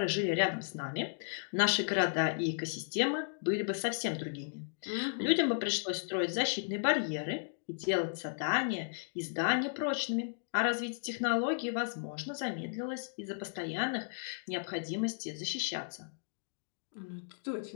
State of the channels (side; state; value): right; silent; digital silence